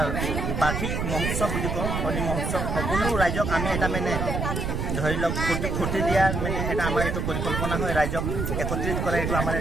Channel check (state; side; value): noise; right; rumble, 1 dB below the sound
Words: বাৰ্ষিক মহোৎসৱ বুলি কওঁ, হোলী মহোৎসৱ। সকলো ৰাইজক আমি এটা মানে ধৰি লওক ফূৰ্তি দিয়াৰ মানে এটা আমাৰ এইটো পৰিকল্পনা হয়, ৰাইজক একত্ৰিত কৰা এইটো আমাৰ